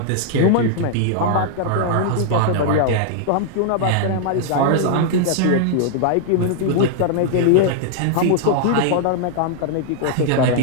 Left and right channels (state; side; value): different; both; correlation -0.01